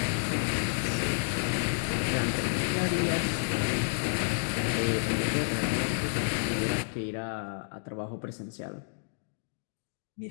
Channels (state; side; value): silent; right; digital silence